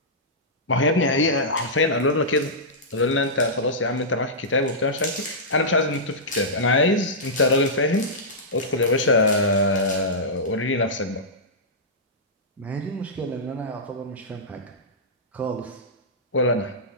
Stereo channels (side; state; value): both; normal; correlation -0.13